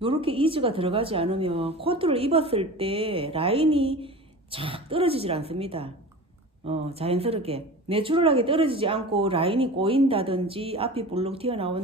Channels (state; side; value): normal; both; correlation 0.35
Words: 이즈가 들어가지 않으면 코트를 입었을 때 라인이 착 떨어지질 않습니다. 자연스럽게 내추럴하게 떨어지지 않고 라인이 꼬인다든지 앞이 볼록